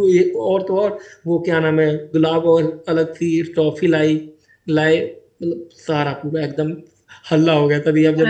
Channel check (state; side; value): identical; both; correlation 1.00